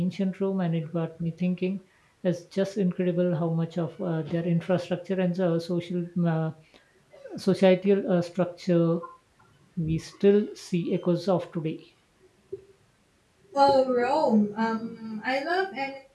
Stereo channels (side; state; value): both; identical; correlation 1.00